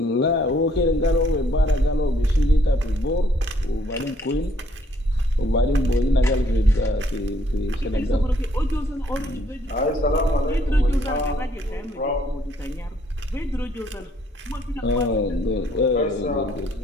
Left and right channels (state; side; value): normal; both; correlation 0.66